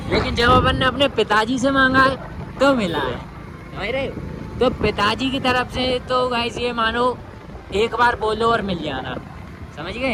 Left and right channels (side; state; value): both; identical; correlation 1.00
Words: लेकिन जब अपन ने अपने पिताजी से मांगा है तो मिला है, समझ रहे हो? तो पिताजी की तरफ से तो गाइस ये मानो एक बार बोलो और मिल जाना, समझ